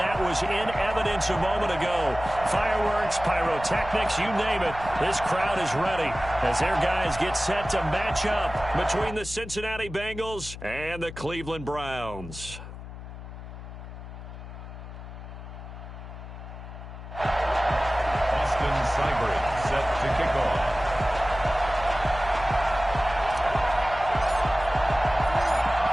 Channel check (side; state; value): left; noise; hum, 12 dB below the sound